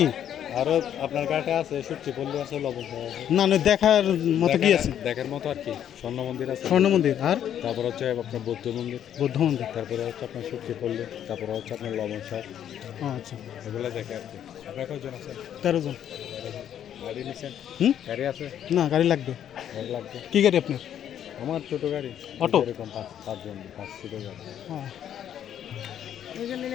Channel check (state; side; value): quieter; right; 10.0 dB